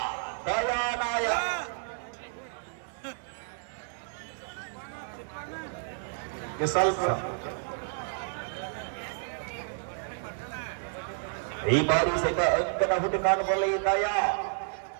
ದಯಾನಾಯ. ಸ್ವಲ್ಪ ಈ ಬಾರಿ ಸಹಿತ ಅಂಕದ ಹುಡುಕಾಟದಲ್ಲಿ ದಯ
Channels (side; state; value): left; silent; 57 dB below the other